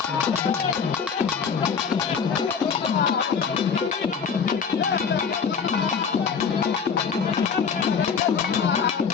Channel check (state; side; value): quieter; right; 6.3 dB